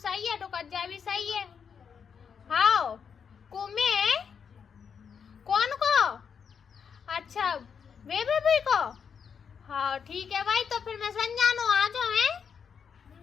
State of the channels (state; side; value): quieter; right; 6.8 dB